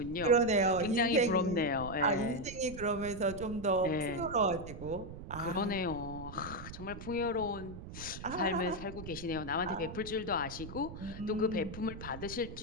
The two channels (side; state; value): right; noise; rumble, 11 dB below the sound